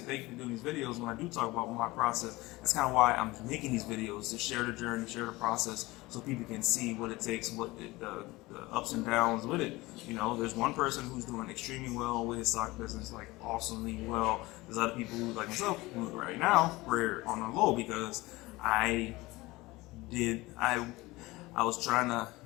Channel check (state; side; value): quieter; right; 20.7 dB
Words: you for doing these videos. When I do talk about my process, that's kind of why I'm making these videos, to share the journey, share the process, so people can see what it takes, what the ups and downs with it. There's one person who's doing extremely well with his sock business, like awesomely well. There's other people who, like myself, who right now we're on the low because I was trying to